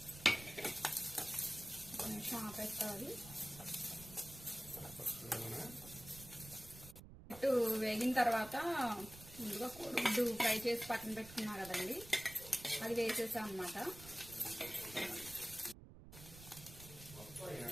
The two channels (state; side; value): noise; right; rumble, 16 dB below the sound